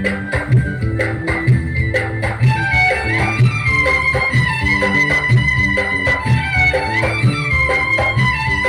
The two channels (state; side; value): identical; both; correlation 1.00